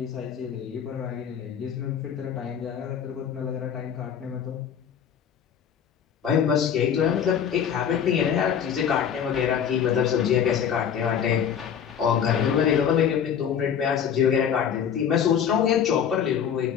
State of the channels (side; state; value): right; quieter; 8.2 dB